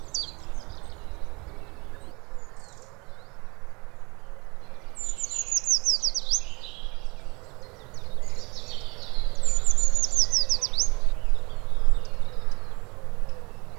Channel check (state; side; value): quieter; left; 26.5 dB